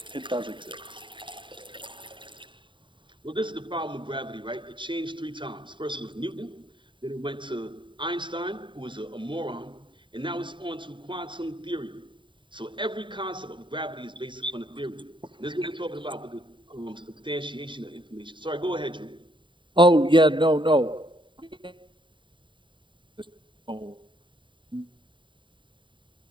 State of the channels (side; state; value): left; late; 0.23 ms